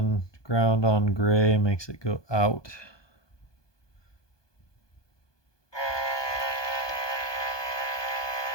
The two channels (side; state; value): right; late; 1.2 ms